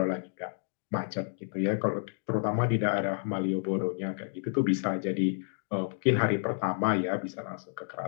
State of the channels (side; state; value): right; silent; digital silence